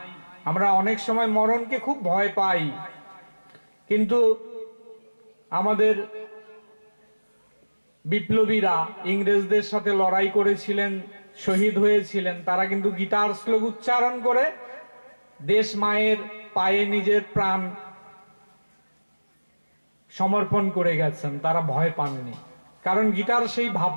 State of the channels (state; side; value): inverted; both; correlation -1.00